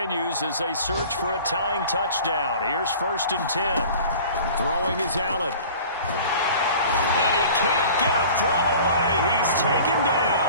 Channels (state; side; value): inverted; both; correlation -0.44